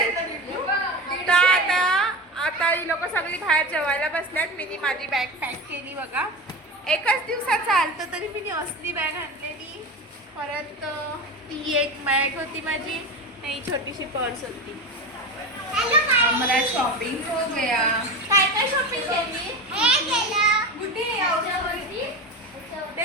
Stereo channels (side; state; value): both; normal; correlation 0.26